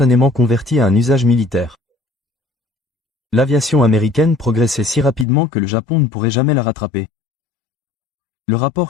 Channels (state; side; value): drops out; right; at 5.2 s